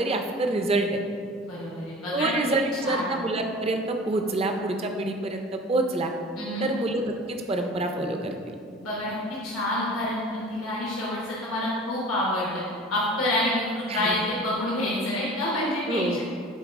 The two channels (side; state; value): both; normal; correlation 0.41